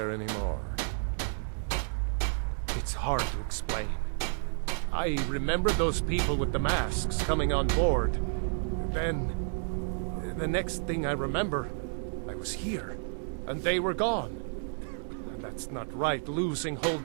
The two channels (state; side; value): silent; left; digital silence